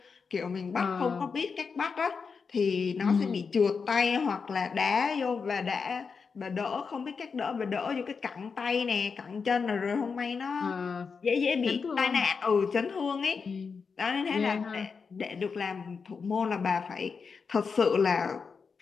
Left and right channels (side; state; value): right; quieter; 5.4 dB